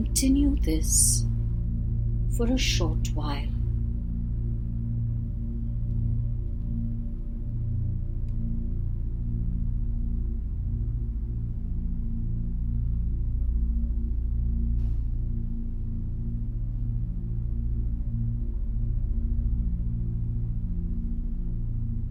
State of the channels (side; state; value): both; identical; correlation 1.00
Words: this for a short while.